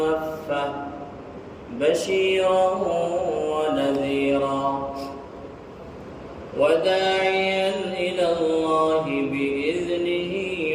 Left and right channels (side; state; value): both; identical; correlation 1.00